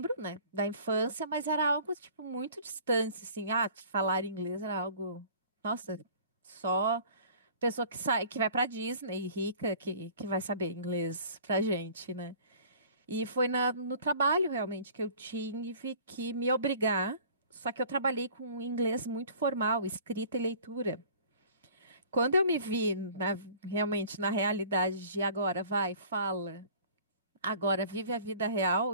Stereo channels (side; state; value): both; inverted; correlation -0.48